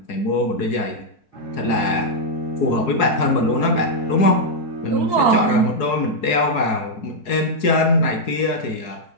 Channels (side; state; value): right; late; 4.7 ms